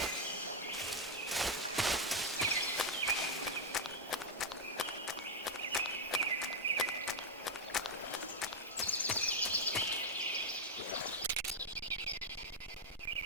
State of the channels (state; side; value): normal; both; correlation 0.02